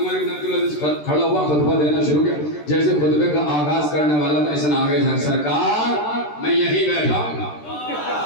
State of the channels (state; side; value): late; right; 13 ms